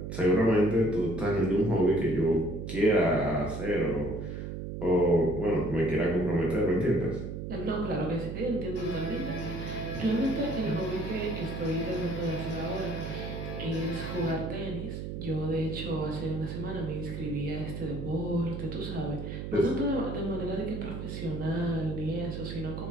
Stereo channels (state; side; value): noise; right; hum, 6 dB below the sound